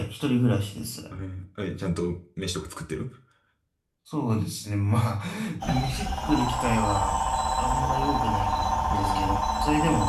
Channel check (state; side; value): identical; both; correlation 1.00